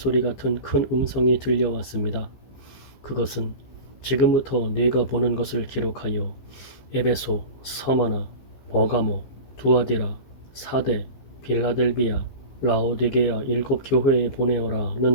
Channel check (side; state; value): right; late; 15 ms